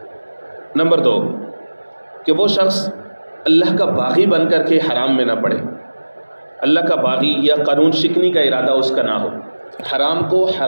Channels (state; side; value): inverted; both; correlation -1.00